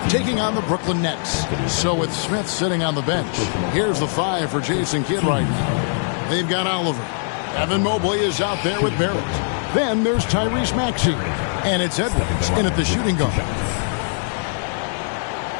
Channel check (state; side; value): silent; right; digital silence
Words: taking on the Brooklyn Nets. So with Smith sitting on the bench, here's the 5 for Jason Kidd right now. They've got Oliver. Evan Mobley is out there with Barrett. Then there's Tyrese Maxey. And it's Edwards in at the shooting guard.